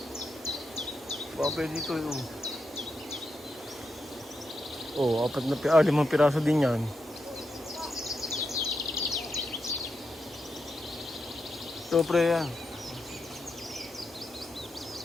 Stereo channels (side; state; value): both; normal; correlation 0.85